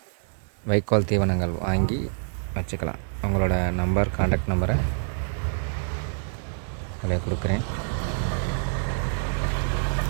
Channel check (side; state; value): left; silent; digital silence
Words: வைக்கோல் தீவனங்கள் வாங்கி வச்சுக்கலாம். அவங்களோட நம்பர், கான்டாக்ட் நம்பரை அதில் கொடுக்குறேன்.